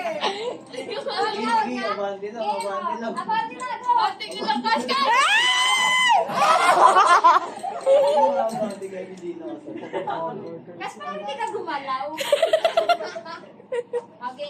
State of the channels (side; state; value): both; identical; correlation 1.00